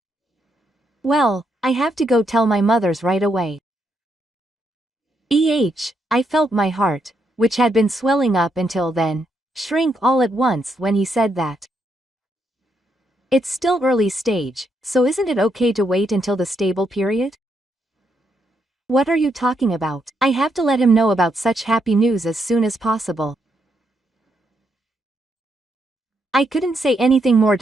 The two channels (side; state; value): both; normal; correlation 0.78